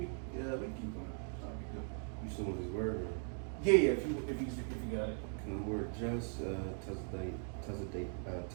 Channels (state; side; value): silent; left; 51 dB below the other